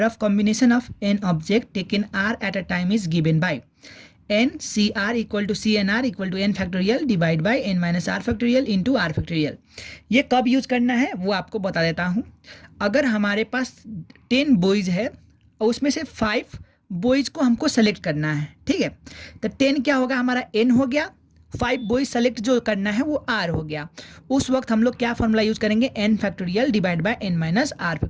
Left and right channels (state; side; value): identical; both; correlation 1.00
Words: of combination of n object taken r at a time is given by n C r equal to C n r equal to n factorial divide by n minus r factorial into r factorial. ये कब use करना है वो आपको बता देता हूँ। अगर हमारे पास 10 बॉयज़ है और उसमें से 5 बॉयज़ को हमको सेलेक्ट करना है, ठीक है। तो 10 क्या होगा, हमारा एन हो गया, 5 बॉयज़ सेलेक्ट जो करना है वो आर हो गया। उस वक्त हम लोग क्या फॉर्मूला यूज़ करेंगे, n factorial divide by n minus r